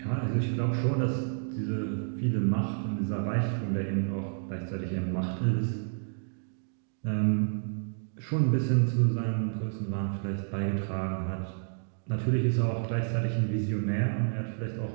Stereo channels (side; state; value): left; silent; digital silence